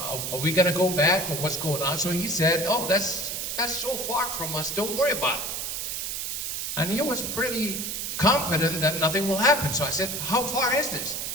we gonna go back or what's going on? So he said, oh, that's so far from us, don't worry about it. And he was pretty confident that nothing will happen. So I said, how far is this?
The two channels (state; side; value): noise; right; hiss, 3 dB below the sound